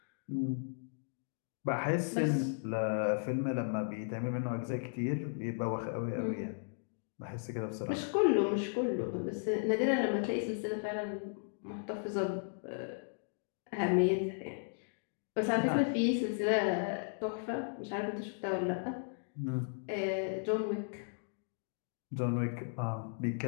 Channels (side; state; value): right; silent; digital silence